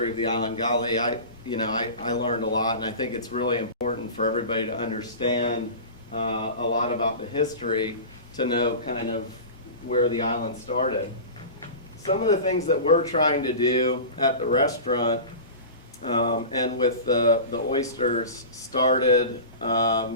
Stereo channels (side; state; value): both; inverted; correlation -0.32